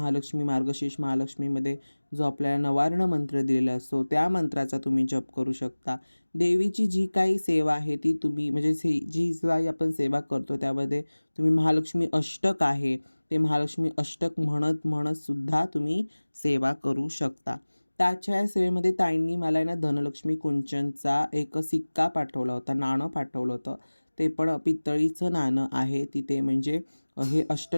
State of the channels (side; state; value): both; inverted; correlation -1.00